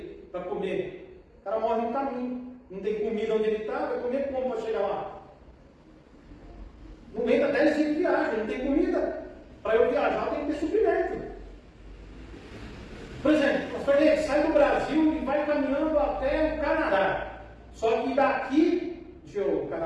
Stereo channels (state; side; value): identical; both; correlation 1.00